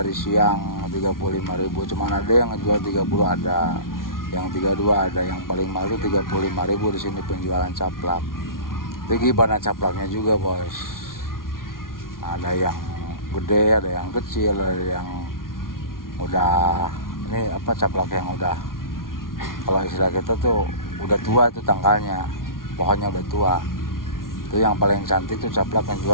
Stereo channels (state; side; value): late; right; 0.92 ms